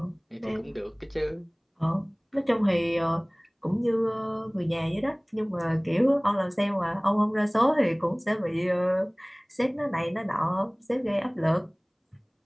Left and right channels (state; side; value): identical; both; correlation 1.00